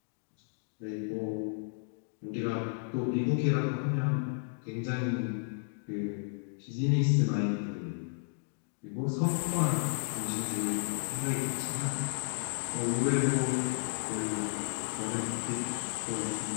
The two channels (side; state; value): right; silent; digital silence